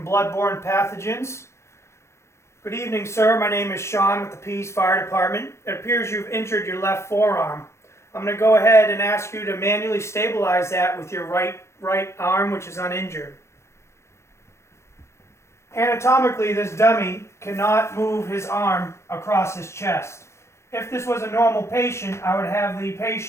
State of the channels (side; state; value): right; late; 0.13 ms